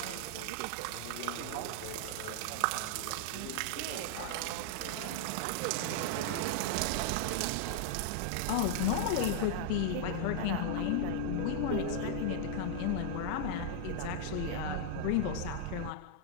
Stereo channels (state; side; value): different; both; correlation -0.01